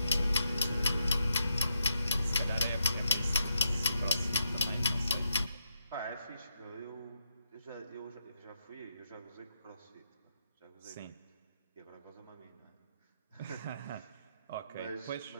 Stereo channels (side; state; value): both; inverted; correlation -0.82